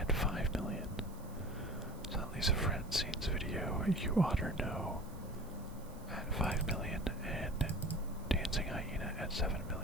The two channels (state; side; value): noise; right; hiss, 23 dB below the sound